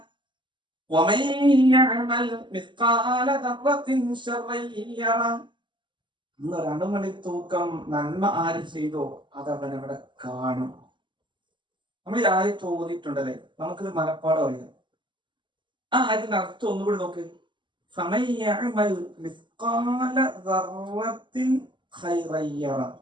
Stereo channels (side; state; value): left; late; 0.23 ms